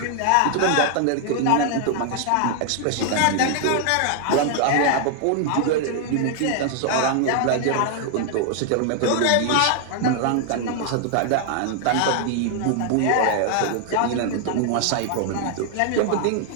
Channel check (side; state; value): both; different; correlation 0.00